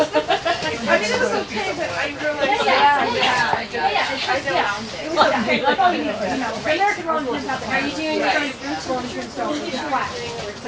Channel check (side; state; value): both; identical; correlation 1.00